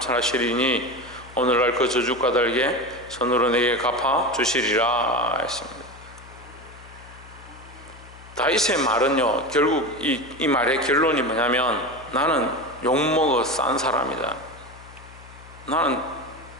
오늘날 그 저주 까닭에 손으로 내게 갚아 주시리라 했습니다. 다윗의 말은요, 결국 이 말의 결론이 뭐냐면, 나는 욕먹어 싼 사람이다. 나는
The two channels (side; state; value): left; noise; hum, 20 dB below the sound